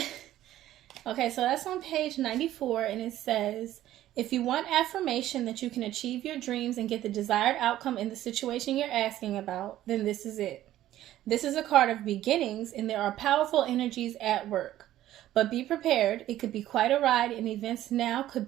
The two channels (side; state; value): left; quieter; 13.5 dB